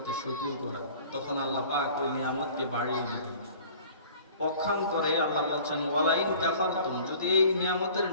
শুকর করা। তখন আল্লাহ পাক ওই নিয়ামতকে বাড়িয়ে দিবেন। পক্ষান্তরে আল্লাহ বলছেন, ওয়া লাইন কাফারতুম, যদি এই নিয়ামতের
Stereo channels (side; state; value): both; inverted; correlation -0.48